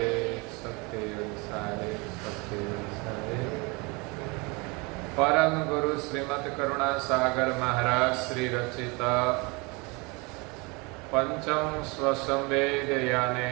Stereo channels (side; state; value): left; quieter; 27.9 dB